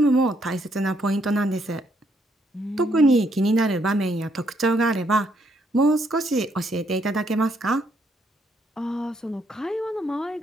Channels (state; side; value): normal; both; correlation 0.72